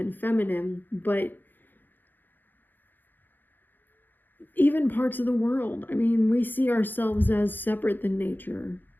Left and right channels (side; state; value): right; late; 0.090 ms